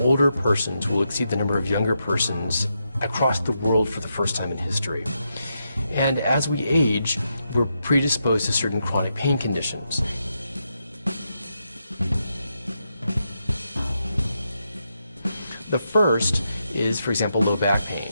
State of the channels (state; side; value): inverted; both; correlation -0.83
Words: persons will exceed the number of younger persons across the world for the first time in history. And as we age, we're predisposed to certain chronic pain conditions. The first is, for example, low back pain.